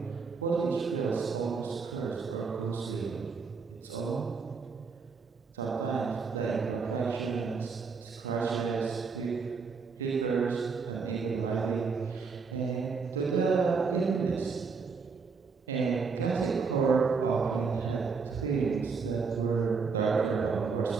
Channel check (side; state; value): left; quieter; 5.1 dB